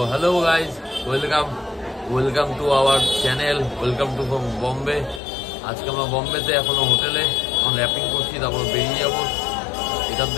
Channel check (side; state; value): right; drops out; at 5.2 s